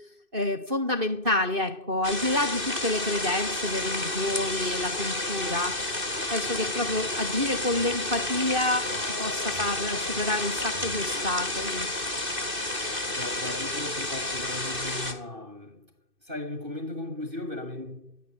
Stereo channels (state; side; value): late; left; 2.6 ms